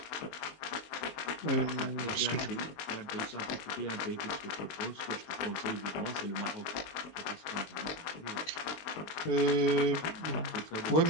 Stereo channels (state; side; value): late; right; 20 ms